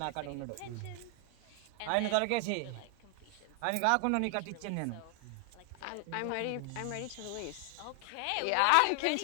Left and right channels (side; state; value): both; different; correlation 0.00